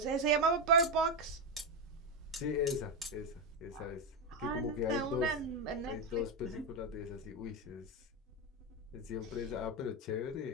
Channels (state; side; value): normal; both; correlation 0.08